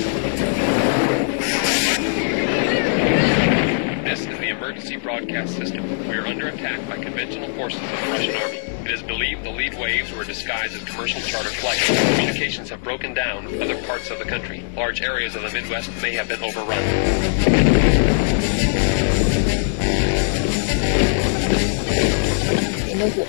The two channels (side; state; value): right; silent; digital silence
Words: This is the emergency broadcast system. We are under attack by conventional forces of the Russian army. It is believed the lead waves were disguised as commercial charter flights. Communications have broken down in other parts of the country. Large areas of the Midwest may have been overrun. They know who